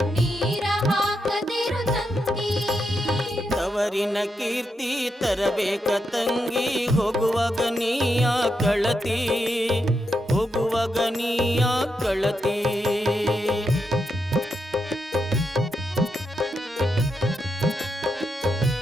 ಹಾಕದಿರು ತಂಗಿ ತವರಿನ ಕೀರ್ತಿ ತರಬೇಕ ತಂಗಿ ಹೋಗುವಾಗ ನೀಯ ಕಳತಿ ಹೋಗುವಾಗ ನೀಯ ಕಳತಿ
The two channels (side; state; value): both; normal; correlation 0.84